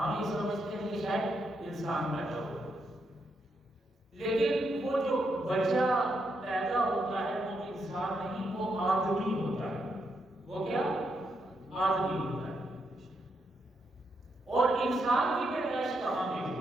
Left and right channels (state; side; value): normal; both; correlation 0.80